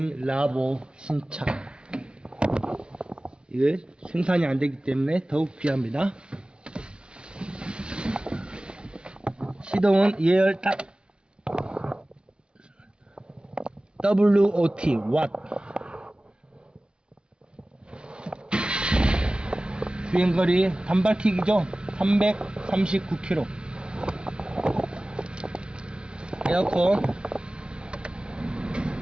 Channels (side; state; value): left; late; 0.055 ms